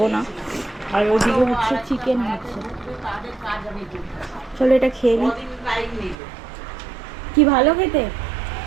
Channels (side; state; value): left; drops out; at 6.2 s